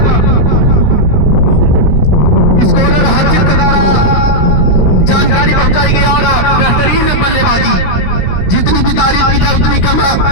स्कोरर हर्षित के द्वारा जानकारी पहुंचाई गई और बेहतरीन बल्लेबाजी। जितनी भी तारीफ की जाए उतनी कम है।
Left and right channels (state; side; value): late; right; 16 ms